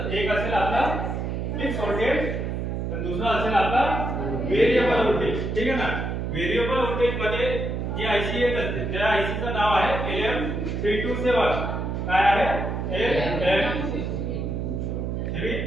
एक असेल आपला फिक्स व्होल्टेज आणि दुसरा असेल आपला व्हेरिएबल व्होल्टेज, ठीक आहे ना? व्हेरिएबल व्होल्टेज मध्ये जी आयसी येत असते त्या आयसीचं नाव आहे LM327। काय आहे?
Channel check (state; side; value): noise; right; hum, 2 dB below the sound